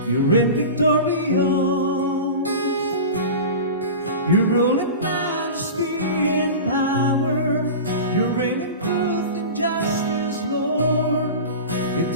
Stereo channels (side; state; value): both; inverted; correlation -0.31